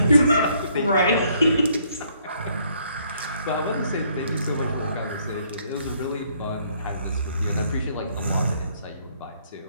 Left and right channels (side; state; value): both; inverted; correlation -0.68